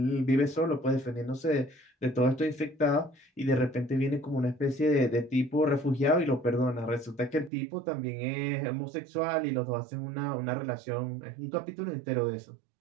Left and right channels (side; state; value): left; drops out; at 7.5 s